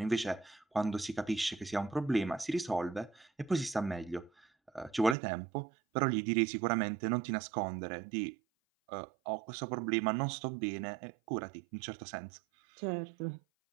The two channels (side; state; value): left; drops out; at 5.2 s